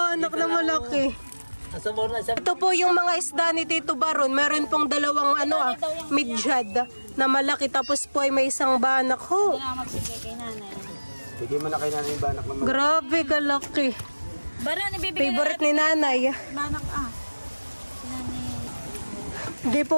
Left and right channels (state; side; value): inverted; both; correlation -1.00